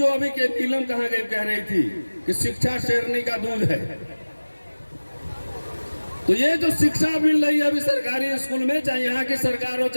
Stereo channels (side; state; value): both; inverted; correlation -1.00